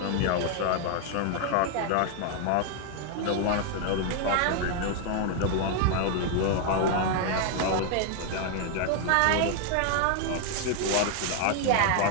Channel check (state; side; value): different; both; correlation 0.00